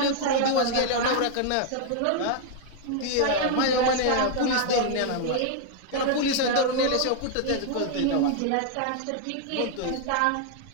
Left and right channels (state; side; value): different; both; correlation 0.00